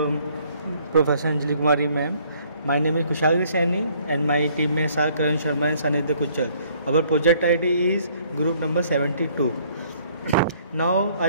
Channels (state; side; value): inverted; both; correlation -0.62